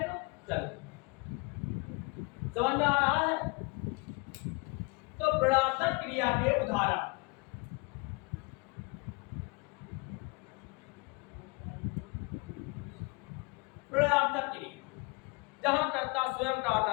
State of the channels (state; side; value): quieter; right; 28.3 dB